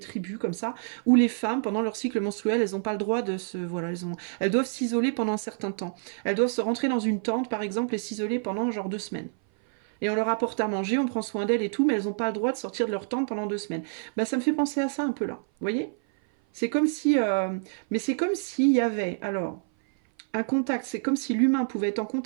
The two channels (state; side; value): silent; left; 57 dB below the other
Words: comme ça, où les femmes, pendant leur cycle menstruel, elles n'ont pas le droit de se... Voilà, elles doivent s'isoler pendant un certain temps. Elles doivent se rentrer dans une tente, par exemple, et s'isoler pendant genre 2 semaines. Et on leur apporte à manger, on prend soin d'elles et tout, mais elles n'ont pas le droit de sortir de leur tente pendant 2 semaines. Bah, ça me fait penser à ça un peu là, vous voyez? C'est comme si... Mais c'est comme s'il y avait, alors, un contact, c'est comme si l'humain pouvait être en